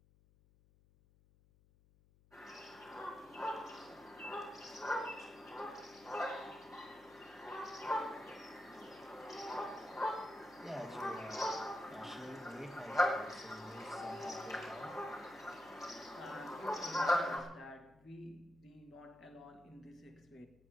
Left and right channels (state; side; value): noise; left; hum, 28 dB below the sound